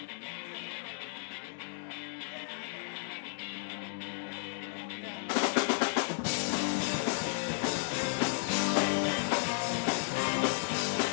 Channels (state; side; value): silent; right; 55 dB below the other